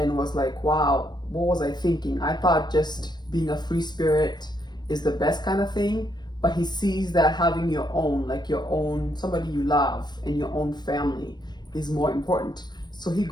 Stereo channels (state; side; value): late; right; 0.21 ms